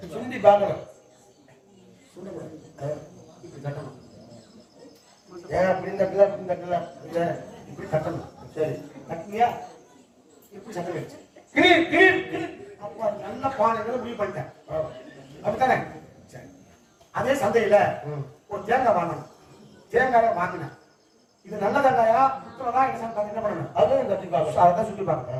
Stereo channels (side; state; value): both; identical; correlation 1.00